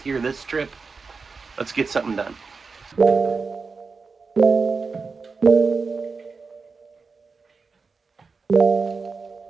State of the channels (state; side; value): quieter; left; 4.6 dB